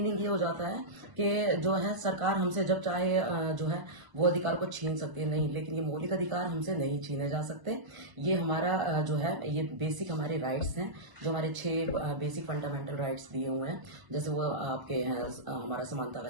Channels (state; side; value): late; left; 1.0 ms